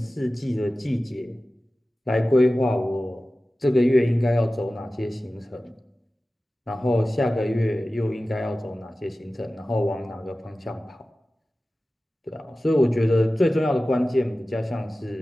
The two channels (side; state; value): both; normal; correlation 0.96